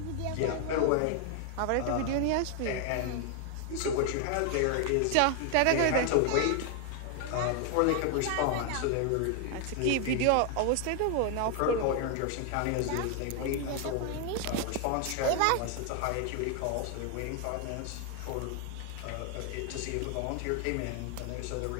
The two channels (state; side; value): different; both; correlation 0.00